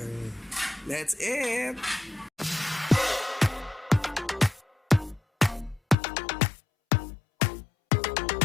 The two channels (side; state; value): right; drops out; at 6.0 s